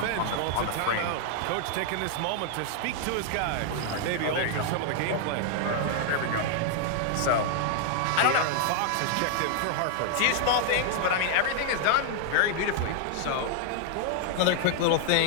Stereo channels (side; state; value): both; different; correlation 0.00